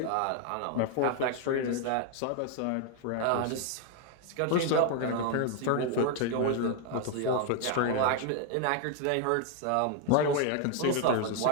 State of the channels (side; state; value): both; different; correlation 0.00